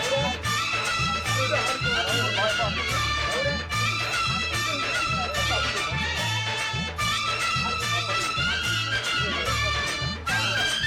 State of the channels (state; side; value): identical; both; correlation 1.00